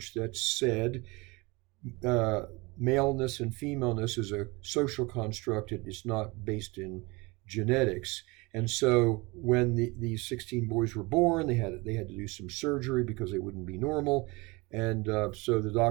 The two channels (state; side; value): quieter; left; 25.1 dB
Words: that said maleness and femaleness is a social construct. It's not based in genetics. And so when these 16 boys were born, they had to do some surgery because they wouldn't be normal. And so the